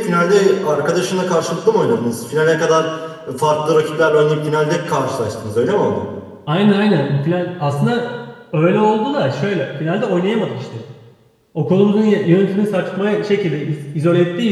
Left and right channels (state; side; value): identical; both; correlation 1.00